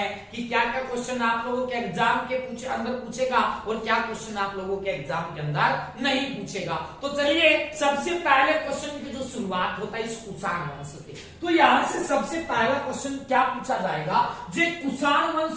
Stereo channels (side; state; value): both; identical; correlation 1.00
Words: कि क्या क्या क्वेश्चन आप लोगों के एग्जाम के अंदर पूछेगा और क्या क्वेश्चन आप लोगों के एग्जाम के अंदर नहीं पूछेगा। तो चलिए, सबसे पहले क्वेश्चन की जो शुरुआत होता है इस कुषाण वंश से, तो यहां से सबसे पहला क्वेश्चन क्या पूछा जाएगा? जो कुषाण